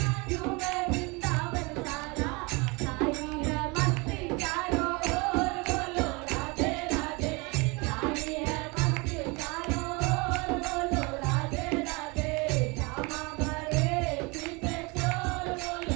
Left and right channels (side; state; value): left; quieter; 27.8 dB